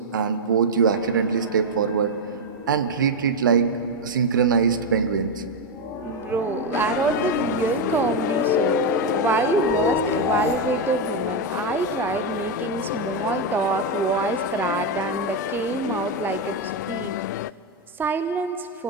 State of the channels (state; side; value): normal; both; correlation 0.04